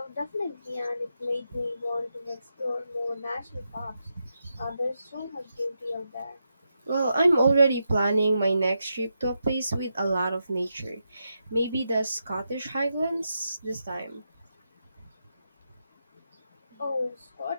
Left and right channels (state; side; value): inverted; both; correlation -0.85